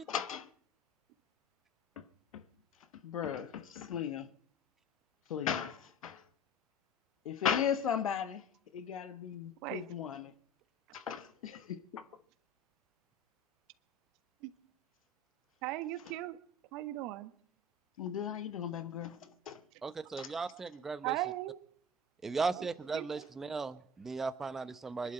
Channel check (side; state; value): both; normal; correlation 0.38